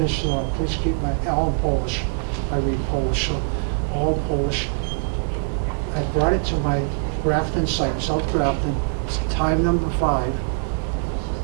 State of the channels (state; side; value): silent; left; 64 dB below the other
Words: it off. Please keep all in Polish. I read Polish, so all Polish. I brought it to my Grafton site, South Grafton, time number 5.